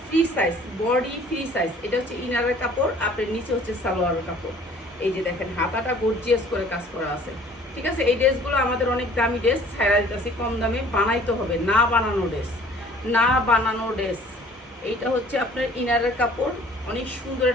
free size, body free size. এটা হচ্ছে ইনারের কাপড়, আপনার নিচে হচ্ছে সালোয়ারের কাপড়। এই যে দেখেন হাতাটা গর্জিয়াস করে কাজ করা আছে, ঠিক আছে? এই ড্রেসগুলো আমাদের অনেক দামি ড্রেস, ছাড়া দিতেছি কম দামে। বানাইতে হবে, না বানানো ড্রেস, না বানানো ড্রেস। এইটা হচ্ছে আপনার ইনারের কাপড়, অনেক সুন্দর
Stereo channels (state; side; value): normal; both; correlation 0.53